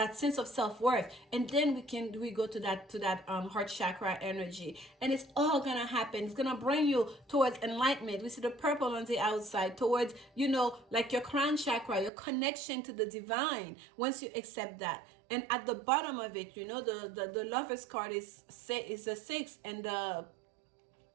sense of self-worth, and then we go to that heart chakra energy, and it's all gonna happen. It's gonna bring you towards enlightenment. We see the purple on the outside, towards, you know, like your crown chakra, your connection to the divine, once you accept that. And at the bottom of it, you know, the Lovers card is a 6, and the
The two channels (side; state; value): left; drops out; at 12.1 s